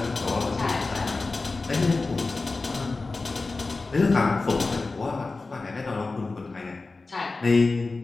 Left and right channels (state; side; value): quieter; right; 3.6 dB